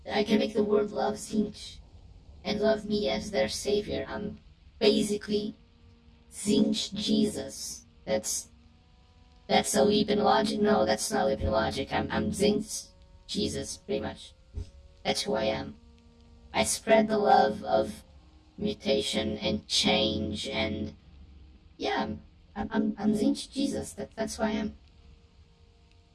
love Zinj. And love me as their savior. I'm basically Zinj Jesus. That's a leap in logic. No, that's not a leap in logic. I'm Zinj Jesus, pretty much. That's who I am. I spread the love of mutation and change, and yeah, I'm Zinj Jesus. That's who I am.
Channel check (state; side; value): identical; both; correlation 1.00